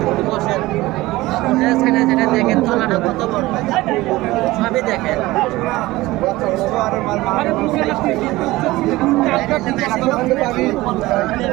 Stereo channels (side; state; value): left; quieter; 18.9 dB